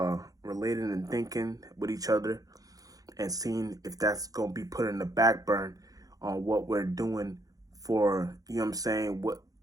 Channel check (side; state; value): left; late; 0.17 ms